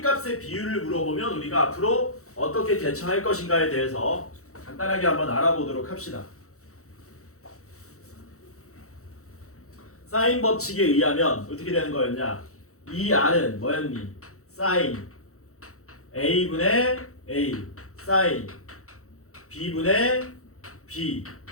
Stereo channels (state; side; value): late; right; 0.64 ms